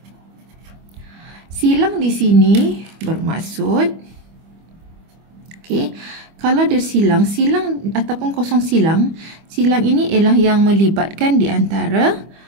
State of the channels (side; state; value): left; late; 25 ms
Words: Silang di sini bermaksud, okey, kalau ada silang ataupun kosong silang ini ialah yang melibatkan di antara